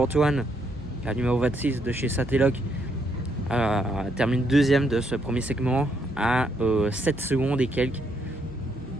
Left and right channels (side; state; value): both; normal; correlation 0.75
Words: la numéro 26 de chez Satelloc, termine deuxième de ce premier segment à 7 secondes et quelques.